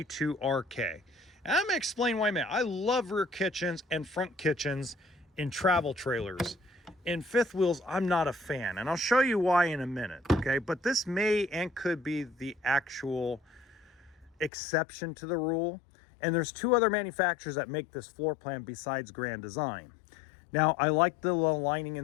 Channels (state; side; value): drops out; right; at 14.5 s